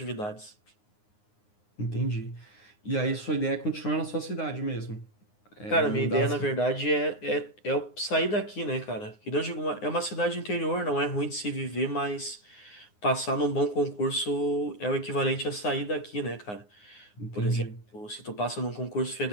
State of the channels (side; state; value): right; late; 9.6 ms